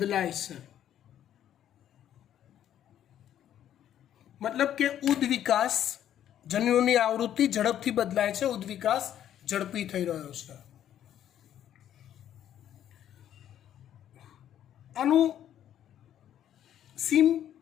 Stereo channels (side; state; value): right; quieter; 10.8 dB